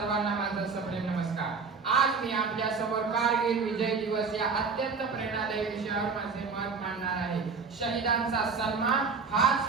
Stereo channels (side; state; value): left; quieter; 5.0 dB